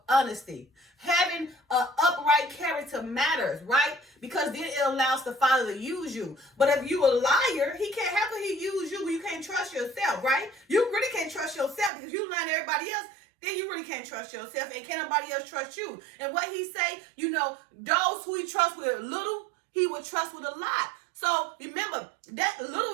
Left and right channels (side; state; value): left; drops out; at 11.9 s